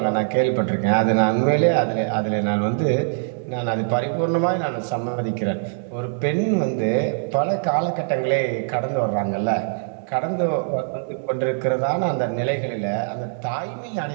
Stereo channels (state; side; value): silent; left; 60 dB below the other